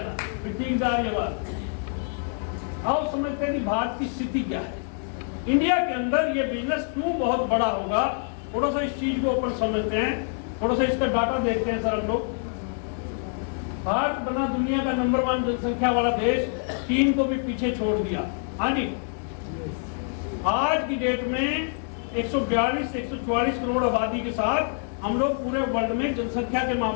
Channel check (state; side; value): silent; right; 56 dB below the other